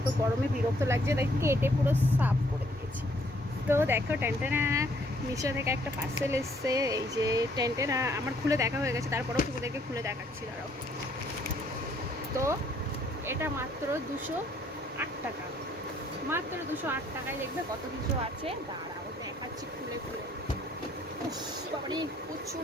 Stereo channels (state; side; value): normal; both; correlation 0.65